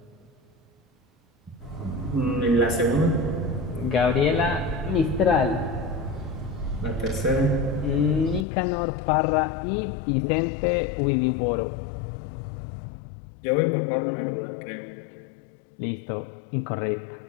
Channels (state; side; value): drops out; right; at 8.5 s